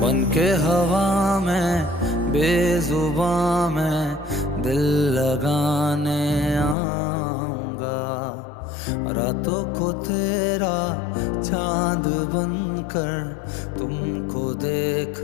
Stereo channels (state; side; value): drops out; right; at 6.8 s